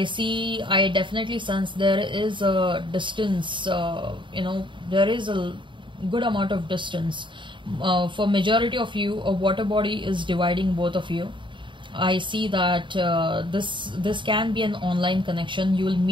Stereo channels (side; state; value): left; late; 0.23 ms